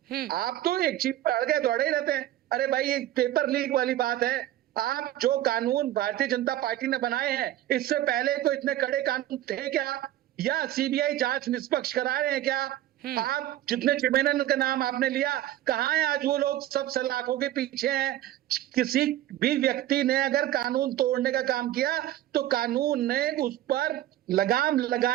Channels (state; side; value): quieter; left; 13.6 dB